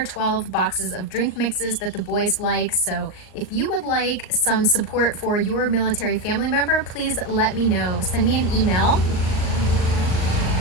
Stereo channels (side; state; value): right; late; 38 ms